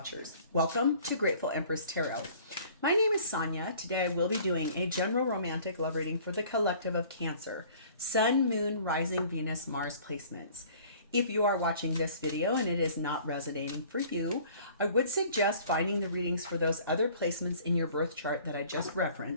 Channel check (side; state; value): both; inverted; correlation -0.51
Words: Welcome to Grateful Empress Tarot. My name is Sonia. Today I will be doing a general romantic love reading for the collective of Cancer. Sun, Moon, Rising, Venus, Mars placements. If you are watching this video and it is not resonating for you, I would suggest finding the readings for those other placements in your birth chart that I just